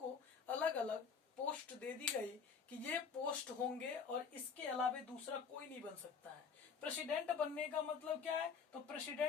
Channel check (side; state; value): right; quieter; 6.0 dB